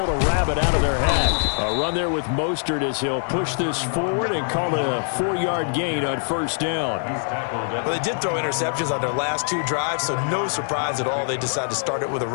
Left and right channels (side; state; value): right; silent; 59 dB below the other